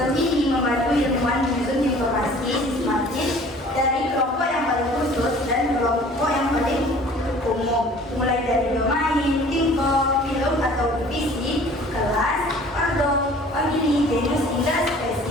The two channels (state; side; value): normal; both; correlation 0.49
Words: Sistem ini membantu ilmuwan menyusun informasi sistematis dari kelompok yang paling khusus dan kelompok yang paling umum, mulai dari domain, tingkat, film atau divisi, kelas, ordo, famili, genus hingga